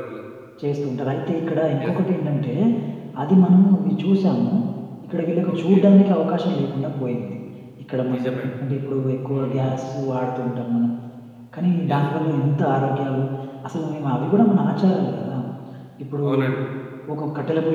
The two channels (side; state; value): both; identical; correlation 1.00